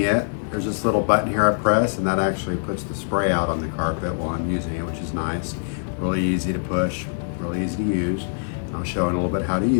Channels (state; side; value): silent; right; digital silence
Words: it, there's this little button here I press, and that actually puts the spray out on the carpet while I'm using it, which is nice. Really easy to push, really easy to use. I'll show in a little bit how to